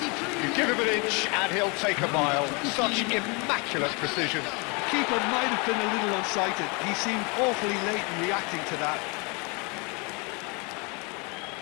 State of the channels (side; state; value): right; quieter; 30.8 dB